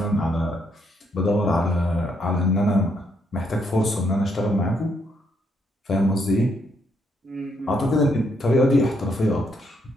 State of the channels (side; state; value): both; normal; correlation 0.75